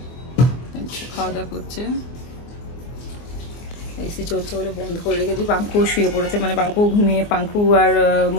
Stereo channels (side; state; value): right; late; 24 ms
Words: খাওয়া দাওয়া করছে। এসি চলছে বলে বন্ধ করে রেখেছি। পাঙ্কু শুয়ে পড়েছে, মানে পাঙ্কু ঘুমিয়ে, পাঙ্কু আর